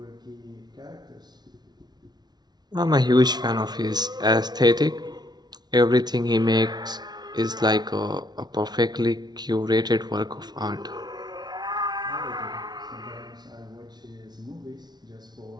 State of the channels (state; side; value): late; left; 0.20 ms